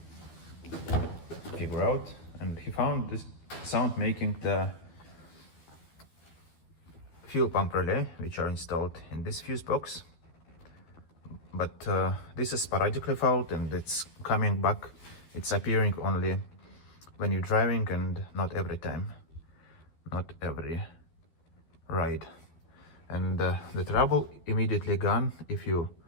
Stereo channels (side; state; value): right; late; 13 ms